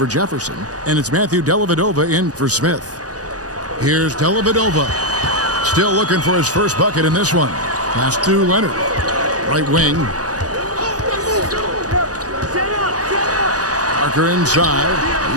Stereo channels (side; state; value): left; late; 0.67 ms